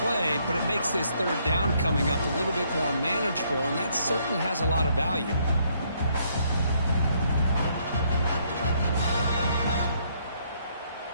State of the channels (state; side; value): inverted; both; correlation -0.70